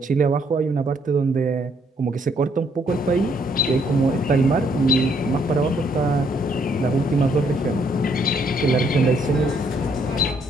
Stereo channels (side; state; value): both; normal; correlation 0.69